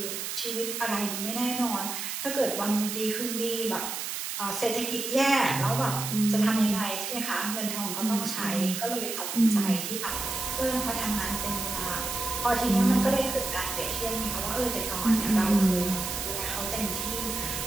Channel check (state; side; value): noise; right; hiss, 4 dB below the sound